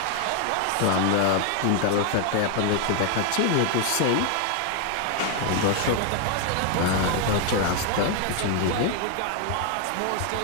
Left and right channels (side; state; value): both; different; correlation 0.00